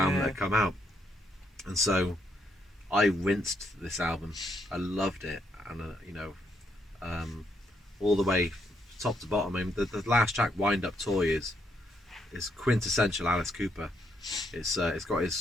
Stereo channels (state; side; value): normal; both; correlation 0.76